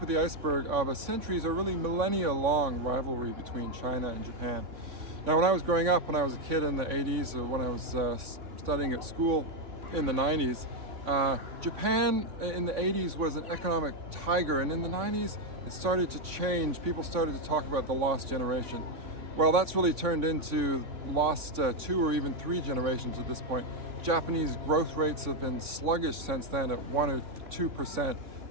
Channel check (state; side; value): late; left; 3.6 ms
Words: of the iceberg of a centuries or really millennia-long rivalry between China and Japan. Now, when I was growing up, when I was a kid in the 80s, or when I was studying at school in the 90s, Japan in the 80s was an economic tiger, and in the 90s it started to change. People started to talk about the lost generation. Well, that's really turned into lost 2 or even 3 generations at this point. Japanese growth rates have been sluggish since then at 1 or 2%,